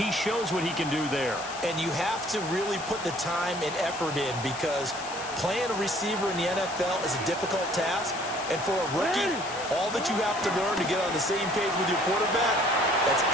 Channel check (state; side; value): noise; left; hiss, 12 dB below the sound